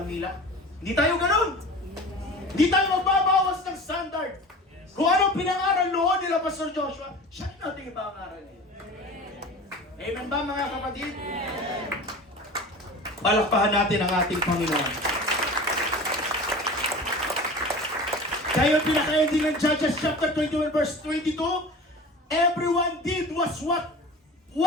nila? Hindi tayo ganun! Hindi tayo magbabawas ng standard. Kung anong pinangaral noon nila Pastor Joshua, siya natin ipangaral niya. Amen ba mga kapatid? Palakpahan natin ang ating Panginoon. Kaya yung pinaka-ending ng Judges chapter 21 verse 22, everyone did what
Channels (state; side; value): normal; both; correlation 0.37